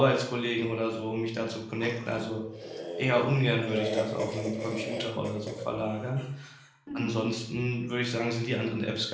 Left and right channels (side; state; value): both; identical; correlation 1.00